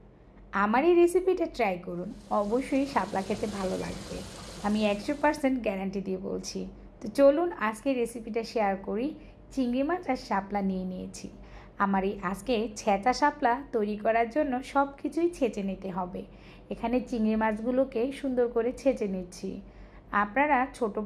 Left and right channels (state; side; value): identical; both; correlation 1.00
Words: আমার এই রেসিপিটা ট্রাই করুন, অবশ্যই শাপলা খেতে ভালো লাগবে। আমি 100% গ্যারান্টি দিয়ে বলছি। তো চলুন আজকে রেসিপিটা শেয়ার করি। চিংড়ি মাছ আর শাপলা নিয়ে নিয়েছি। আমার এই আজকে ছেঁচা শাপলা তৈরি করার জন্য সব কিছুই ছেঁচে নিতে হবে। এখানে চিংড়ি মাছগুলোকে সুন্দর করে ছেঁচে নিচ্ছি। আপনারা ছোট